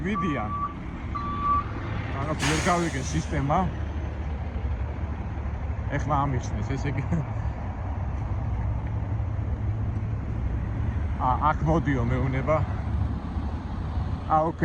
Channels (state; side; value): identical; both; correlation 1.00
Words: ვიდიან. რაღაც ვერ გავიგე სისტემა. ეხლა ამიხსნეს, ესე იგი აქ მოდიო მეუნება.